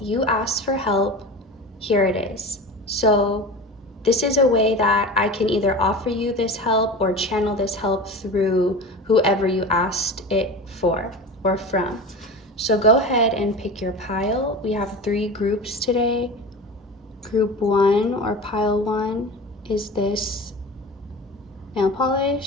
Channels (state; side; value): normal; both; correlation 0.31